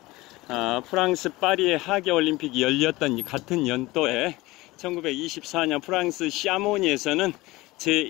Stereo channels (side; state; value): right; quieter; 20.3 dB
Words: 프랑스 파리의 하계 올림픽이 열렸던 같은 연도에 1924년 프랑스 샤모니에서는